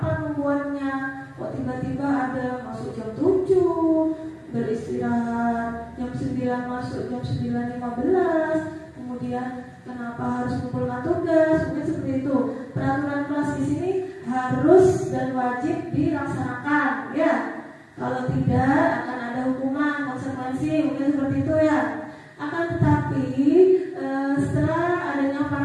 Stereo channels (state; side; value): identical; both; correlation 1.00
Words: membuatnya. Kok tiba-tiba ada masuk jam 7, beristirahat jam 9, masuk jam 9.15, kemudian kenapa harus mengumpulkan tugas? Mungkin seperti itu. Peraturan kelas di sini harus dan wajib dilaksanakan, ya. Kalau tidak akan ada hukuman, konsekuensi, mungkin seperti itu ya. Akan tetapi setelah adanya